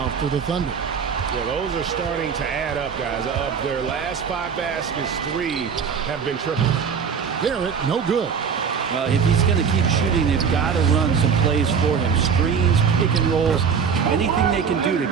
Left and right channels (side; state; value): left; quieter; 6.5 dB